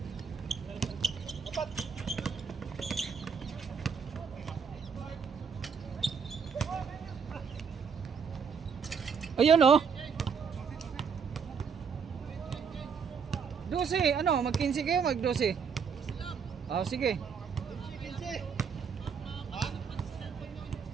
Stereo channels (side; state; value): left; quieter; 6.2 dB